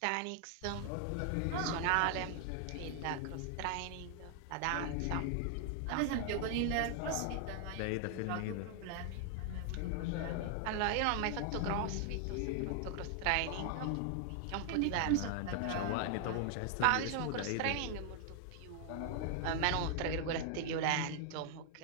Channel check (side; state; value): both; different; correlation 0.00